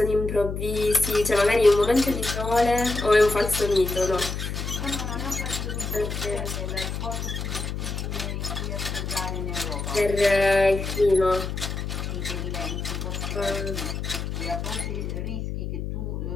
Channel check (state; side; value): noise; left; hum, 4 dB below the sound